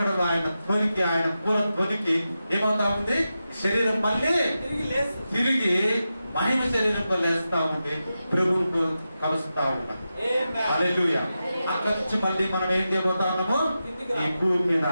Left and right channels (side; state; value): both; inverted; correlation -0.91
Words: ఆయన ధ్వనికి, ఆయన పూల ధ్వనికి ఏమవుతా ఉంది? శరీరం మళ్ళీ తిరిగి మహిమ శరీరంలో లేస్తా ఉంది, ప్రభువుకు కలుస్తా ఉన్నాం. హల్లెలూయా. అక్కడి నుంచి మళ్ళీ మనం ఏం చేయబోతా ఉన్నాము? ఈ భూమి మీద